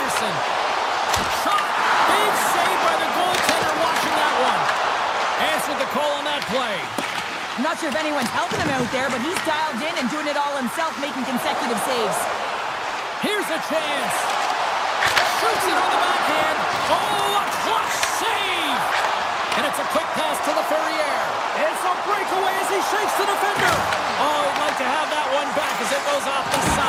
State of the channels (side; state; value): both; identical; correlation 1.00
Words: Shot. Big save by the goaltender watching that one. Answered the call on that play. I'm not sure if anyone's helping him out there, but he's dialed in and doing it all himself, making consecutive saves. Here's a chance. Shoots it on the backhand. Oh, a clutch save. And it's a quick pass to LaFerriere. It's a breakaway as he shakes the defender. Oh, he'd like to have that one back as it goes off the